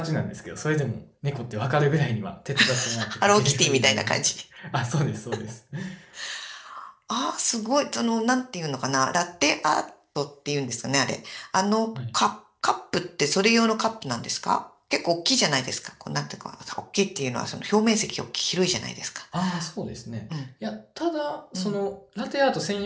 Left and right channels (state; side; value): identical; both; correlation 1.00